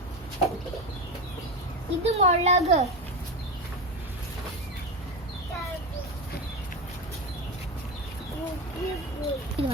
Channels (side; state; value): both; normal; correlation 0.19